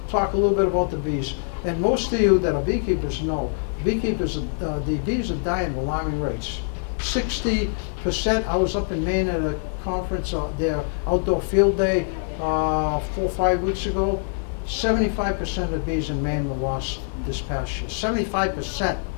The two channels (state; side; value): silent; right; digital silence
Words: talk a little bit about the bees. And most of you that are beekeepers know, the bees are dying at alarming rates. 60%, I was up in Maine at a conference, their outdoor field day, 4 or 5 weeks ago. 75% of the bees in Maine were lost this past year. 75%.